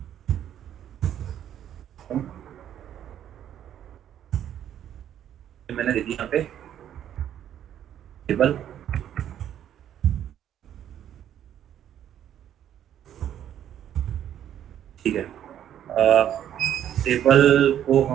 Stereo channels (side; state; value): left; quieter; 10.5 dB